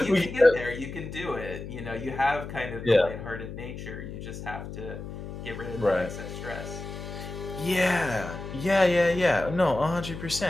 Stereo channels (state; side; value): noise; left; hum, 9 dB below the sound